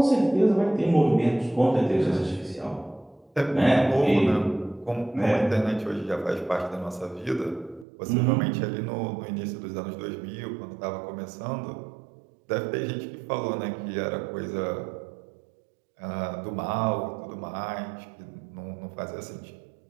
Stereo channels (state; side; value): drops out; left; at 7.9 s